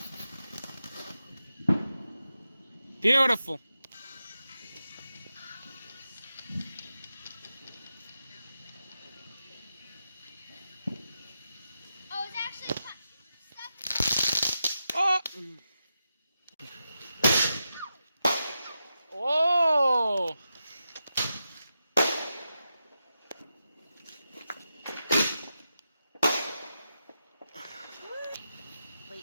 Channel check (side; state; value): both; inverted; correlation -0.89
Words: Beautiful. Oh, it's actually stuck. Oh. Oh. Wait.